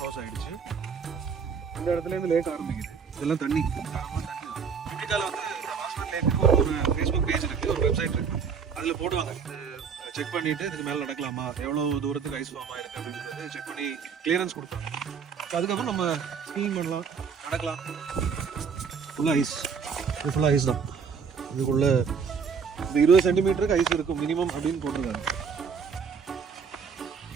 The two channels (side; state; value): left; quieter; 6.2 dB